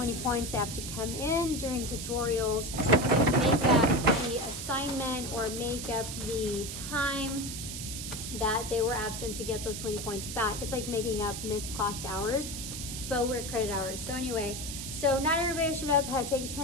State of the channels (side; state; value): right; noise; hiss, 7 dB below the sound